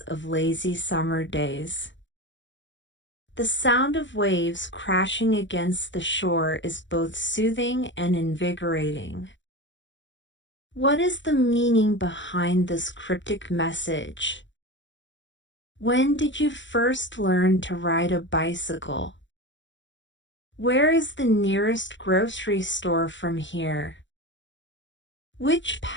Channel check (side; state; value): right; late; 0.54 ms